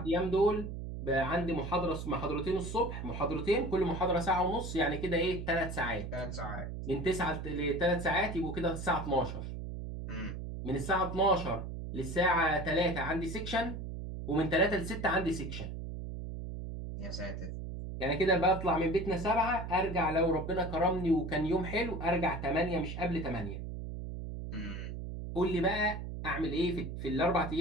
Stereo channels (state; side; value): noise; right; hum, 7 dB below the sound